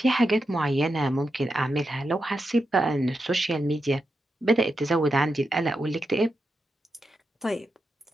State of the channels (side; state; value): both; normal; correlation 0.87